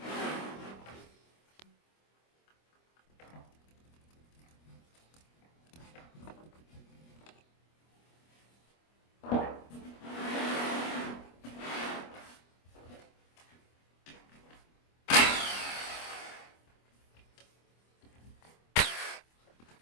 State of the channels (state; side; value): late; right; 25 ms